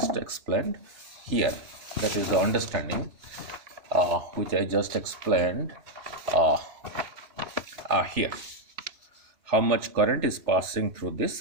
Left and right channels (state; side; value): late; left; 3.4 ms